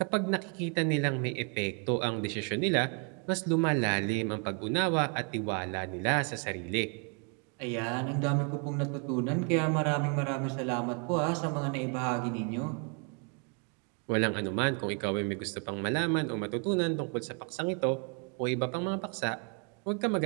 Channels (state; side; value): quieter; left; 37.3 dB